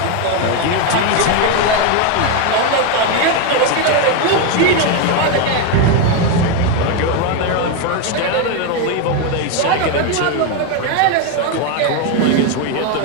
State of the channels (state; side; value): different; both; correlation 0.02